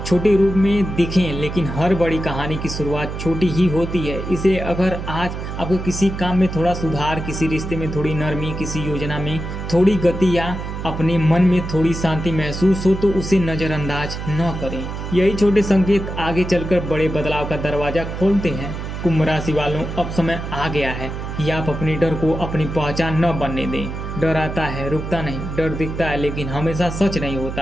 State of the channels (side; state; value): right; noise; hum, 6 dB below the sound